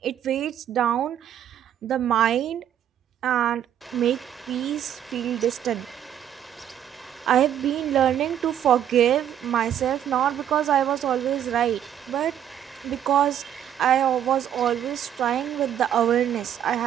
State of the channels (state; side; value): quieter; left; 10.1 dB